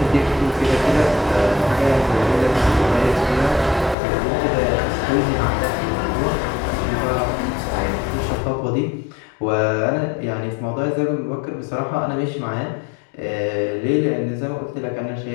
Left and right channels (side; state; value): right; drops out; at 4.0 s